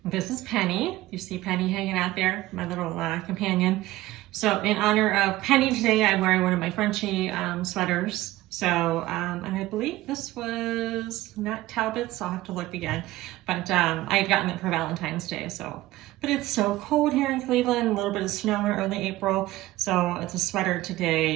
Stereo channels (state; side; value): quieter; left; 17.1 dB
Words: This is Penny. You see Penny hanging out there, my little companion. So in honor of Penny today, I'm wearing one of my Frenchie sweaters. So, and I believe this was not Talbot's, so I'll have to look again. But I had gotten it for Valentine's Day, so. But it's so cold here in Cleveland, a little bit of snow in early April. So it's a sweater